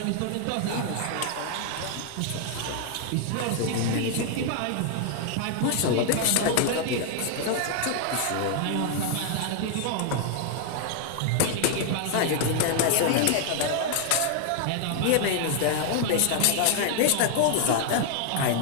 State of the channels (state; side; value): different; both; correlation 0.00